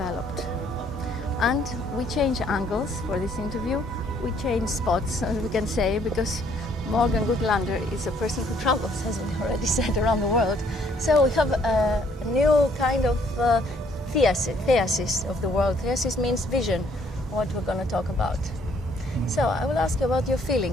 And we change angles for this interview. We change spots, as we can say, because Morgan Goodlander is a person who travels, as we already said, around the world. So we have a new kind of theasis of the world. Theasis means vision, what we're going to talk about. So I will ask you about your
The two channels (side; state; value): both; normal; correlation 0.65